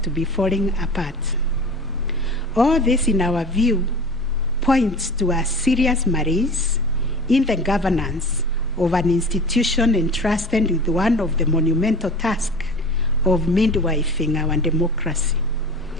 to be falling apart. All this, in our view, points to a serious malaise in the governance of an institution entrusted with one of the monumental tasks of midwifing our democracy,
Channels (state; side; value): normal; both; correlation 0.37